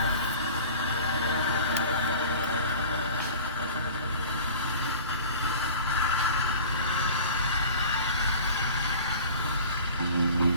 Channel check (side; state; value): both; inverted; correlation -0.42